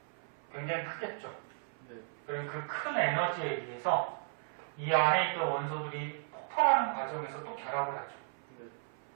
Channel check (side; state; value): left; silent; 54 dB below the other